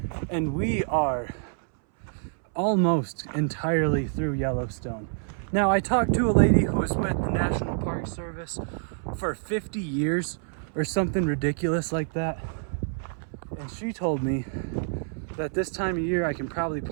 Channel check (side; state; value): left; silent; 60 dB below the other